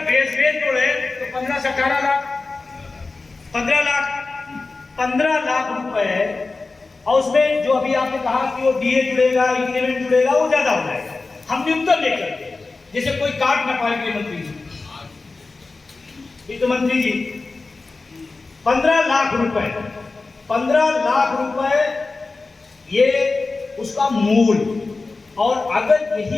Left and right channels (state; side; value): quieter; right; 3.7 dB